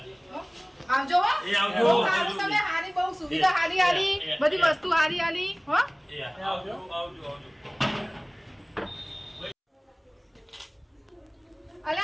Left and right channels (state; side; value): identical; both; correlation 1.00